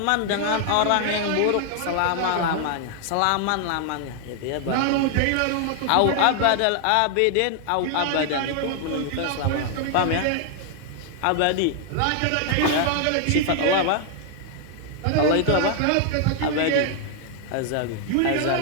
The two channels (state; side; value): different; both; correlation 0.00